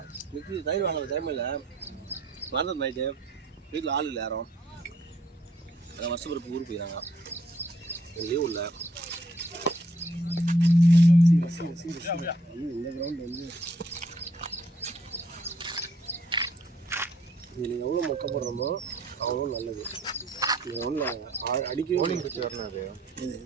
மிக்சி தயிர் வாங்க டைமில் மறந்தது நைட்டு வீட்டில் ஆள் இல்லை யாரும். அதான் வருஷம் பிறப்பு ஊருக்கு போயிடறாங்க. லீவ் இல்லை. இந்த கிரவுண்ட் வந்து இதில் எவ்வளோ மொக்க போடுறோமோ அவ்வளோ நல்லது. நீங்கள் ஒன்றும் அடிக்க போலிங் பிச்சு வரணும். அது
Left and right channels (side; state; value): both; normal; correlation 0.66